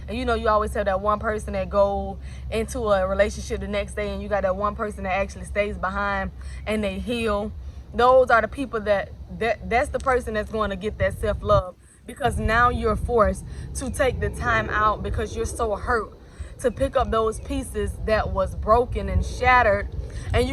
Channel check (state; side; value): identical; both; correlation 1.00